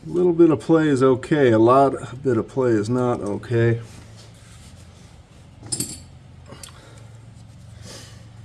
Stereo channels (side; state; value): both; identical; correlation 1.00